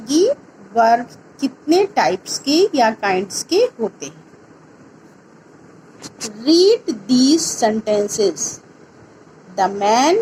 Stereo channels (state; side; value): identical; both; correlation 1.00